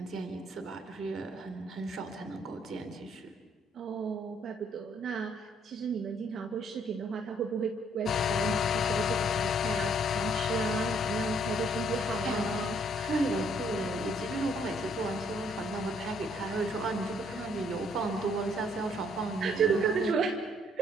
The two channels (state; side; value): normal; both; correlation 0.66